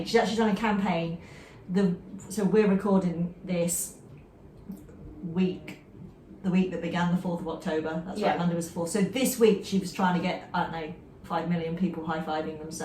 she's actually done a campaign. So we're recording this the week that began the 4th of October. That's right, Monday was the 4th. So this week she was trying to get, I don't know, 5 million people high-fiving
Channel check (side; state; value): both; identical; correlation 1.00